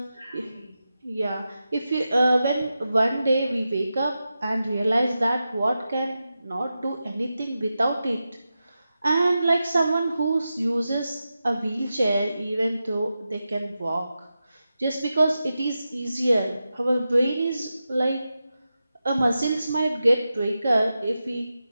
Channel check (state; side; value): inverted; both; correlation -0.91